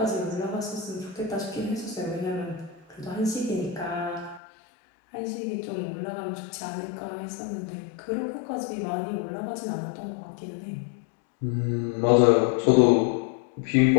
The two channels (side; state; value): right; drops out; at 4.4 s